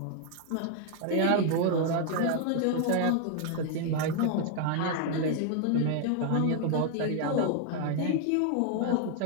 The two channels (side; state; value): both; different; correlation 0.00